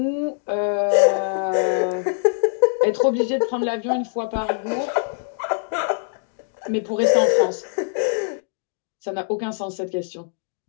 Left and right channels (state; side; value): silent; right; digital silence